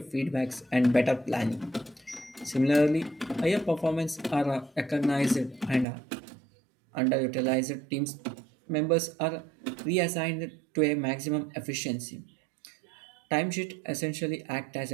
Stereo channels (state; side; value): drops out; left; at 5.9 s